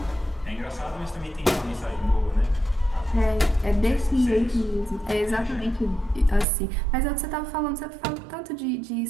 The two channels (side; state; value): left; drops out; at 6.5 s